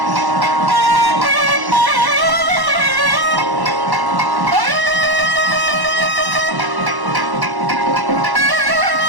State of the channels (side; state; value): left; late; 1.1 ms